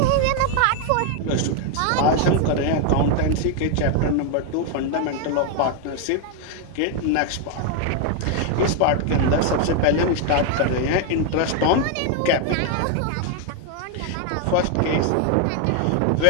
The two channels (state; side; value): different; both; correlation 0.01